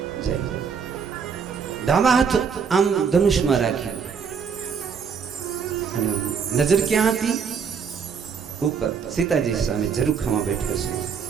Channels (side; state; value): left; quieter; 6.4 dB